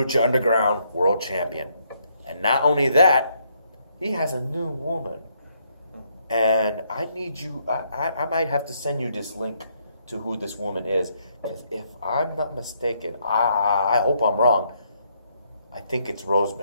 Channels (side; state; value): both; inverted; correlation -0.73